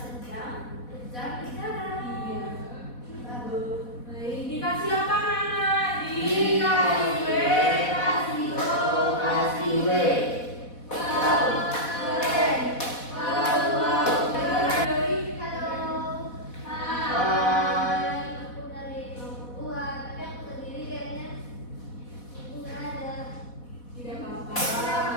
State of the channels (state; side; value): late; right; 4.1 ms